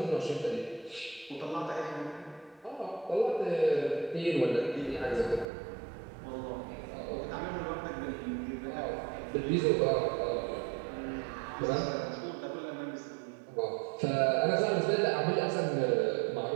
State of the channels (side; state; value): left; drops out; at 5.5 s